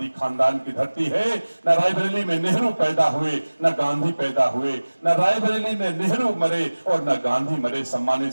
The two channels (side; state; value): both; inverted; correlation -1.00